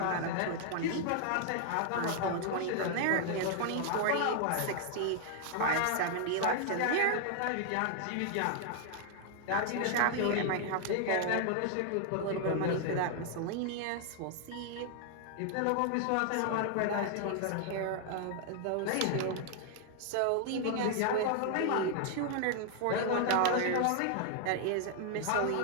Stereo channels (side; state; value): both; different; correlation 0.00